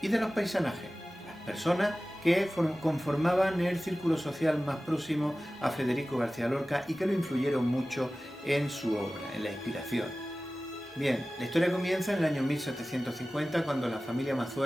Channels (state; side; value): normal; both; correlation 0.96